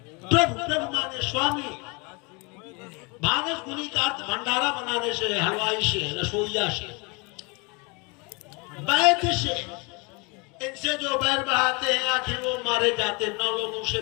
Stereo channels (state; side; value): quieter; right; 29.7 dB